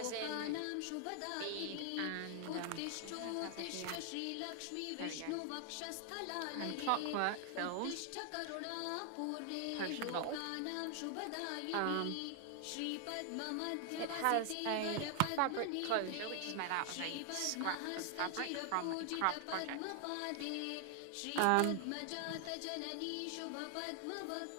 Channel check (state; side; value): different; both; correlation 0.00